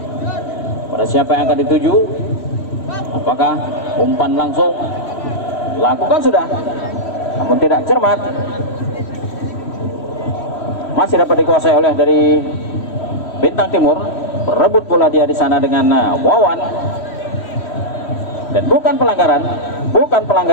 Pada siapa yang akan dituju? Apakah umpan langsung? Lakukan sudah, namun tidak cermat. Masih dapat dikuasai oleh dari Bintang Timur. Berebut bola dia di sana dengan Wawan. Dan bukan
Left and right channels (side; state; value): right; late; 3.1 ms